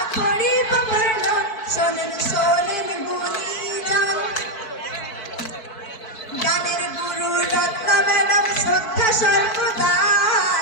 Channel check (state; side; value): late; right; 4.5 ms